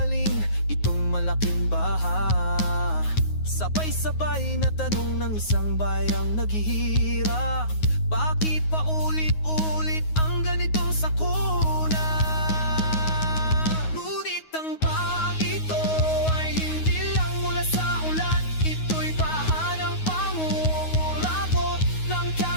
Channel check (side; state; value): right; late; 9.5 ms